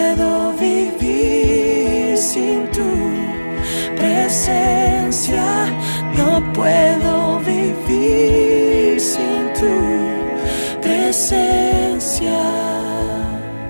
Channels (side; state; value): both; inverted; correlation -1.00